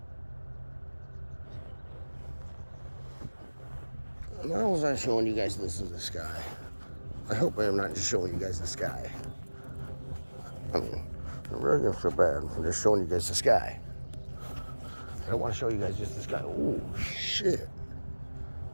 Why was I showing you guys this in the sky? I hope I am not just showing you guys the sky. I mean, I'm really gonna feel bad for just showing you guys the sky. I don't want to show you guys just the sky. Oh, shit.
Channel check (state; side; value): inverted; both; correlation -1.00